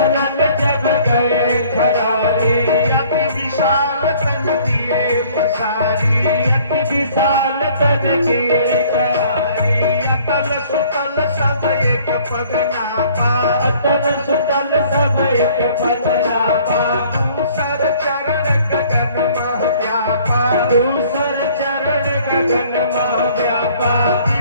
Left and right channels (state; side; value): inverted; both; correlation -0.56